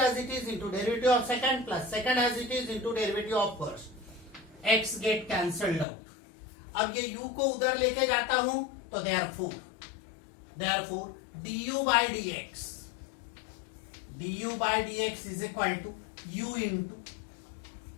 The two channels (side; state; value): right; drops out; at 5.9 s